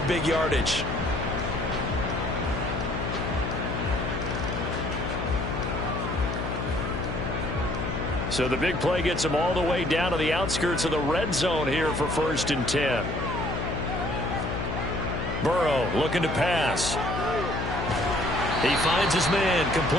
big yardage. So the big play gets them all the way down to the outskirts of the red zone here for 1st and 10. Burrow looking to pass. He finds his man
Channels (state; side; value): noise; left; hum, 3 dB below the sound